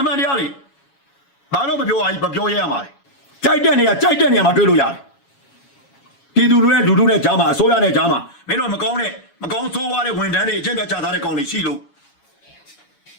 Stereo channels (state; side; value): late; right; 7.3 ms